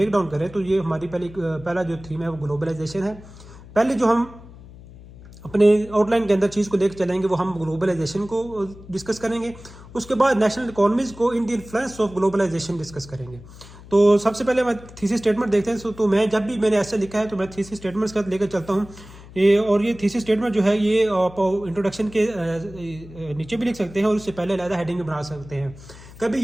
डाउन करें तो ये हमारी पहला जो थीम है वो ग्लोबलाइजेशन है। पहले जो हम अपने आउटलाइन के अंदर चीज़ को लेकर चलेंगे वो हम ग्लोबलाइजेशन को डिस्कस करेंगे। उसके बाद नेशनल इकोनॉमीज़ को in the influence of globalisation discuss करेंगे। तो सबसे पहले मैं थीसिस स्टेटमेंट देखते हैं। तो मैं जब भी मैंने ऐसे लिखा है तो मैं थीसिस स्टेटमेंट्स का लेकर चलता हूँ। ये थीसिस स्टेटमेंट जो है ये आप इंट्रोडक्शन के नीचे भी लिख सकते हैं और उससे पहले अलग हेडिंग भी बना सकते हैं। कभी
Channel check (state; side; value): noise; left; hum, 19 dB below the sound